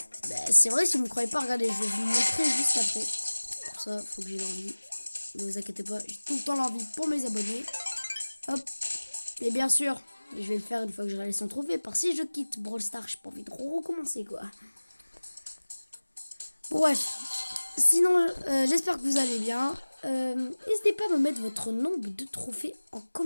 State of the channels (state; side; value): inverted; both; correlation -1.00